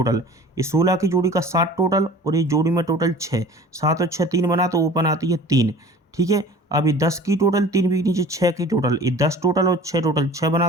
ये 16 की जोड़ी का 7 टोटल और ये जोड़ी में टोटल 6, 7 और 6 3 बना तो ओपन आती है 3, ठीक है। अब ये 10 की टोटल 3 बीच नीचे 6 की टोटल, ये 10 टोटल और 6 टोटल 6 बना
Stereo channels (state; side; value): normal; both; correlation 0.43